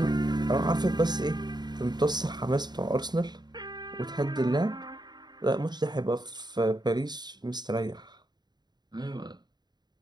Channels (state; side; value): late; left; 0.20 ms